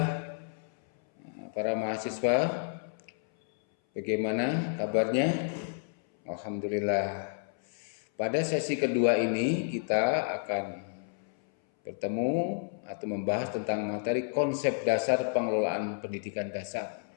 para mahasiswa, bagaimana kabarnya? Alhamdulillah. Pada sesi kedua ini kita akan bertemu atau membahas tentang materi konsep dasar pengelolaan pendidikan dasar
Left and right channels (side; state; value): right; silent; 57 dB below the other